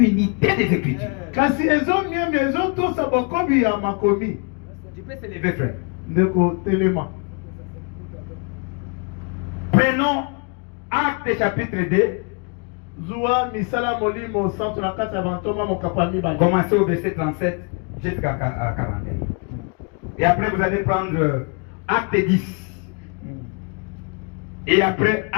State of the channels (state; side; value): quieter; right; 35.0 dB